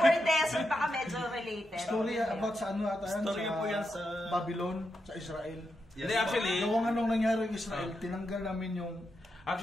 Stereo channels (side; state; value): both; normal; correlation 0.85